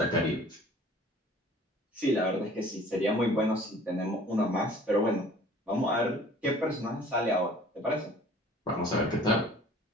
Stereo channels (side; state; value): both; normal; correlation 0.50